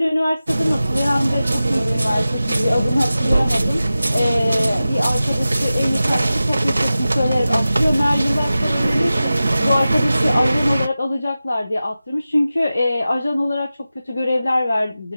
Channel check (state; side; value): inverted; both; correlation -0.94